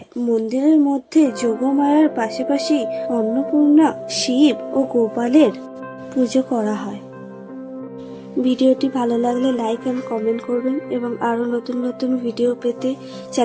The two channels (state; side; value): identical; both; correlation 1.00